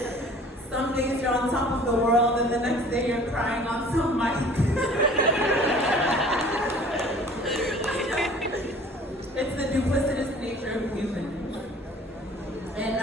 Some days you're on top of the world and the next day you're crying on some mic. It's the duplicitous nature of humans. And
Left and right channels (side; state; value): both; normal; correlation 0.49